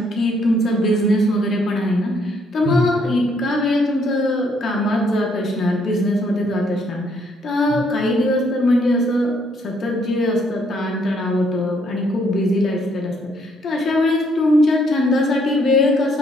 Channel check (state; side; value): normal; both; correlation 0.69